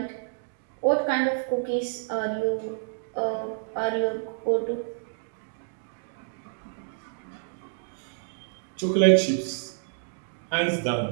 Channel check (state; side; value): silent; left; digital silence